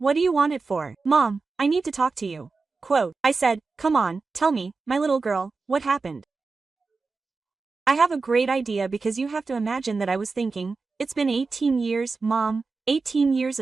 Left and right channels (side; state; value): left; quieter; 4.2 dB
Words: do you want it for, mom? I need to talk to you." Quote, I said, "Come on, tell me, my little girl, what happened?" I have a great idea, because you have to imagine that I was thinking, it's been 18 years, mom, 18 years